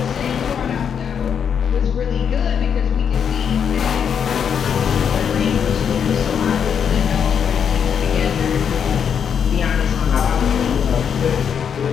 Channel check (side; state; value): right; quieter; 7.5 dB